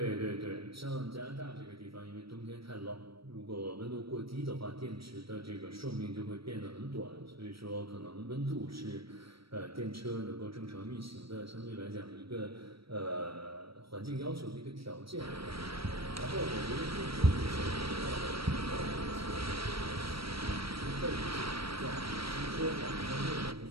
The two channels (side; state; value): left; late; 0.75 ms